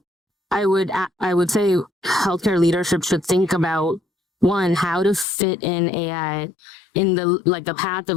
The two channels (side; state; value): right; drops out; at 5.2 s